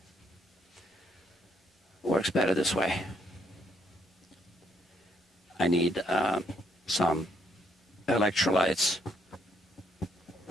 Works better this way. I need some electrolytes.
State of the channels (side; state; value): both; normal; correlation 0.70